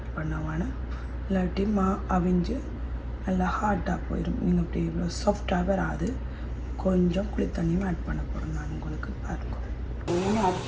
பண்ண வேணும். இல்லாட்டி அவிஞ்சு நல்லா ஹார்டாக போயிடும். நீங்கள் இப்படி இவ்வளோ சாஃப்டாக வராது. கொஞ்சம் குளி தண்ணியும் ஆட் பண்ண போகிறேன் நான் உங்களுக்கு பாருங்க. ஆட்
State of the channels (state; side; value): identical; both; correlation 1.00